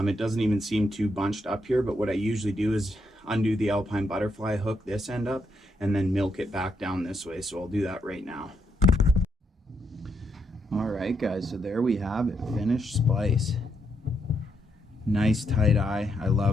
doesn't even seem too bunched up here, but what I usually do is undo the Alpine Butterfly, hook this end up, and then milk it back down this way. So I'll do that right now. Alright guys, so there we have it, finished splice. Nice tight eye. I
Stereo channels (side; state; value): both; normal; correlation 0.78